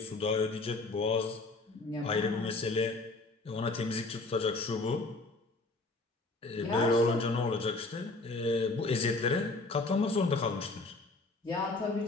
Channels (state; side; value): quieter; right; 3.2 dB